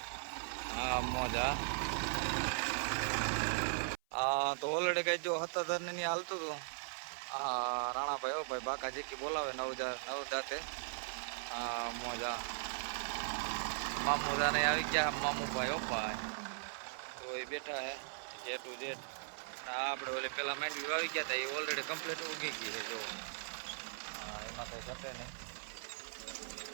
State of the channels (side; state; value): left; silent; 52 dB below the other